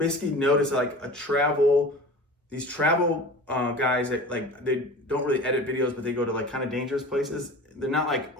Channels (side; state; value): both; normal; correlation 0.37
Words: noticed like these travel guys that like, they don't really edit videos, but they go to like kind of dangerous places. They're not like